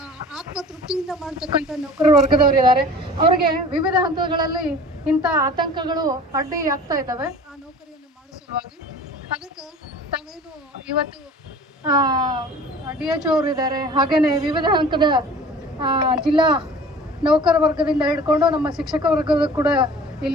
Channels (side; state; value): both; normal; correlation 0.43